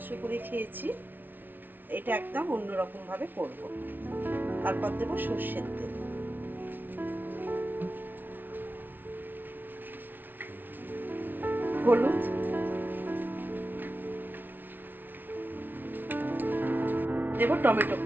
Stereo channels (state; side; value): late; left; 0.090 ms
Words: করে খেয়েছি, এটা একদম অন্যরকমভাবে করব। তারপর দেব সর্ষের তেল, হলুদ, দেব টমেটো